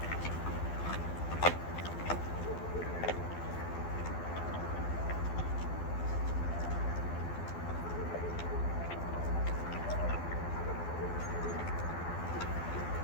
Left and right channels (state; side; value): late; right; 12 ms